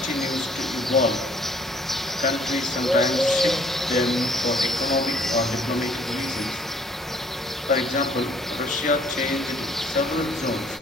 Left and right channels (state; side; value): normal; both; correlation 0.60